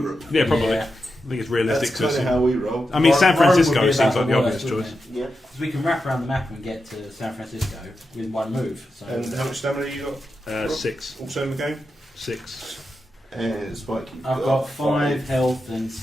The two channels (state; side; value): normal; both; correlation 0.89